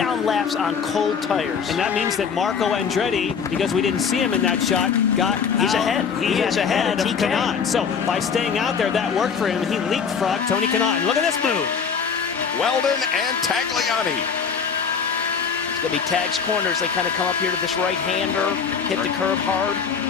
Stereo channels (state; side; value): quieter; right; 6.4 dB